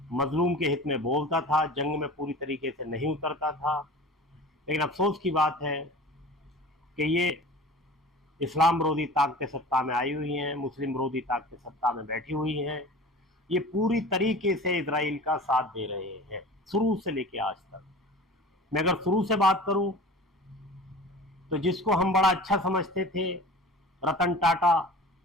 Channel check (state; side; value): normal; both; correlation 0.39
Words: मज़लूम के हित में बोलता था, जंग में पूरी तरीके से नहीं उतरता था, लेकिन अफ़सोस की बात है कि ये इस्लाम विरोधी ताकतें सत्ता में आई हुई हैं, मुस्लिम विरोधी ताकतें सत्ता में बैठी हुई हैं। ये पूरी तरीके से इजराइल का साथ दे रहे हैं, शुरू से लेके आज तक। मैं अगर शुरू से बात करूं तो जिसको हम बड़ा अच्छा समझते थे, रतन टाटा,